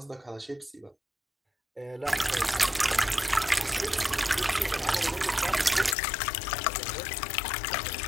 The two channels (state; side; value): drops out; right; at 6.0 s